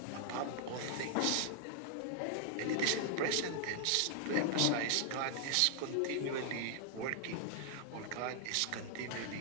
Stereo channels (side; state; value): both; different; correlation 0.00